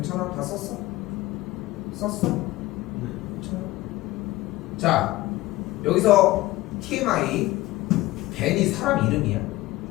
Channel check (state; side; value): quieter; right; 18.1 dB